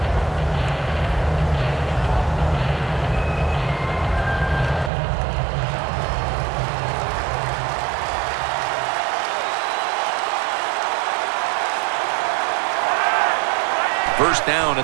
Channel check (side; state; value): left; drops out; at 4.9 s